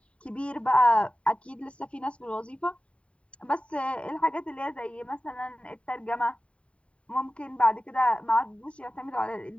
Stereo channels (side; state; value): right; late; 0.061 ms